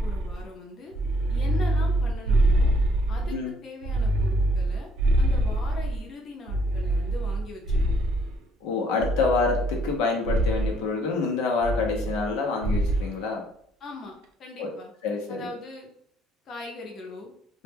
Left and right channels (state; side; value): normal; both; correlation 0.65